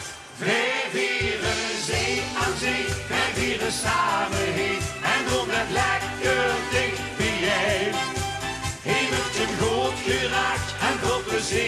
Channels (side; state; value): both; identical; correlation 1.00